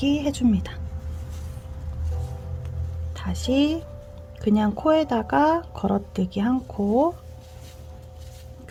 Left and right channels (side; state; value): both; identical; correlation 1.00